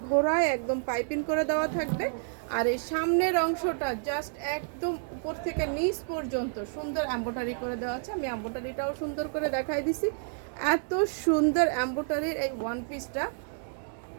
ঘোড়ায় একদম পাইপিং করে দেওয়া থাকবে। আর এই সামনের অংশটা জাস্ট একদম উপর থেকে নিচ পর্যন্ত সুন্দর এমব্রয়ডারি করে দেওয়া আছে। আমি এমব্রয়ডারিটাও সুন্দর করে দেখাই দিছি। এত সুন্দর এমব্রয়ডারির এই ওয়ান পিসটা,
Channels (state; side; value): silent; left; digital silence